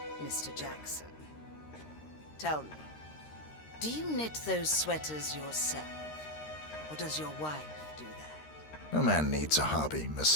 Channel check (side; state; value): right; late; 13 ms